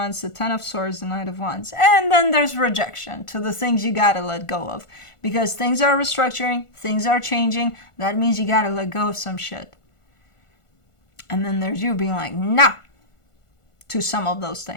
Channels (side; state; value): right; late; 1.4 ms